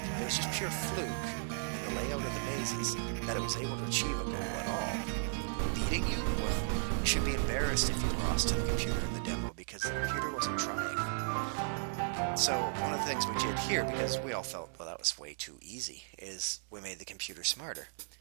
It was just pure fluke in the layout of the mazes that it was able to achieve a goal at all. Beating you? Well, you should be embarrassed if you lost to the computer in the demo because the computer wasn't trying. So one of the things we did here, because we all felt, well, that was way too easy, is we made the computer smarter.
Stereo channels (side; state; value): left; silent; digital silence